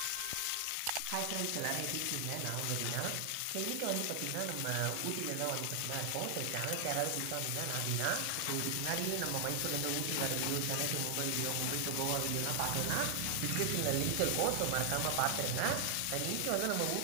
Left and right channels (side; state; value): both; different; correlation 0.00